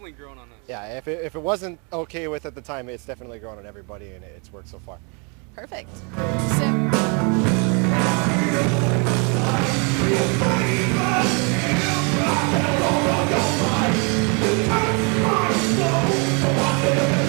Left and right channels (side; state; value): left; quieter; 34.6 dB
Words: grown on us. Yeah, if it wasn't okay with at the time, it's definitely grown on everybody, and it's worked so far. Perfect.